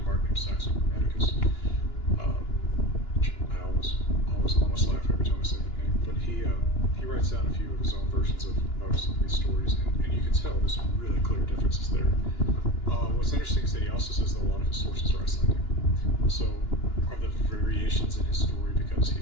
named Saxo Grammaticus. I almost laugh every time I say the name, but he writes down a few of his own versions of some of these stories, and you can tell there's some really clear differences there. What's interesting is that he also says that a lot of his sources are Icelandic. So are the variations in his story because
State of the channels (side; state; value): right; late; 2.9 ms